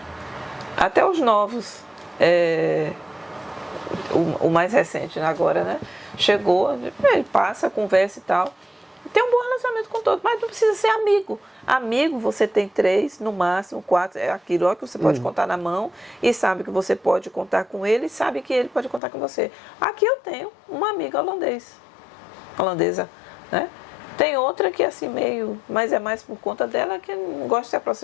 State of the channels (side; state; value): right; drops out; at 19.0 s